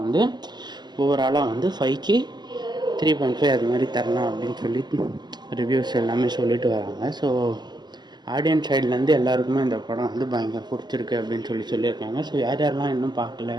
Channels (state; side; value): late; left; 0.21 ms